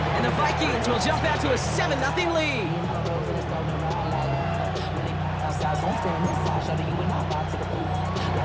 And the Vikings will jump out to a 7-0 lead.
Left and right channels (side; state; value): both; identical; correlation 1.00